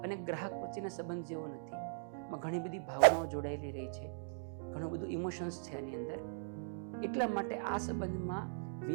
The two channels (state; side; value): silent; left; digital silence